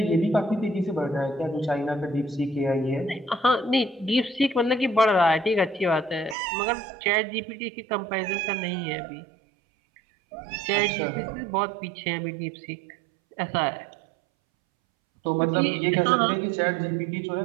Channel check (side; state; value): left; drops out; at 6.4 s